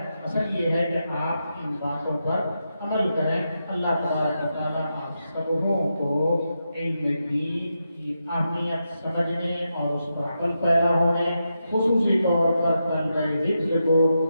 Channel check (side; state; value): both; inverted; correlation -0.86